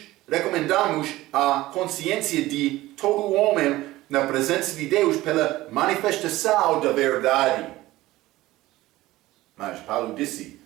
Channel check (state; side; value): quieter; left; 17.3 dB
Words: recomendamos a consciência de todo homem na presença de Deus pela manifestação da verdade. Mas Paulo disse,